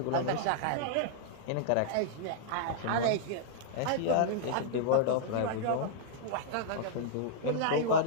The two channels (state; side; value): different; both; correlation -0.01